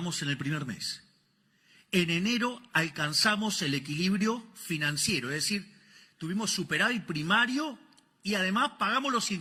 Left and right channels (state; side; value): identical; both; correlation 1.00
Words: en el primer mes. En enero alcanzamos el equilibrio financiero, es decir, tuvimos superávit primario y además pagamos los